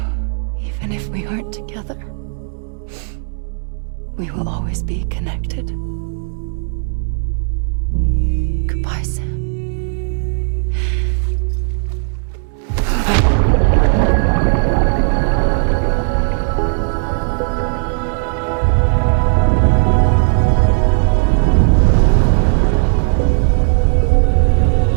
Even if we aren't together, we will always be connected. Goodbye, Sam.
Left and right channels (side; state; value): left; silent; 69 dB below the other